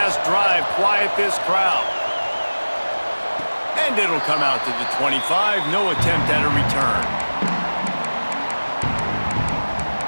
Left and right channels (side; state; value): both; inverted; correlation -1.00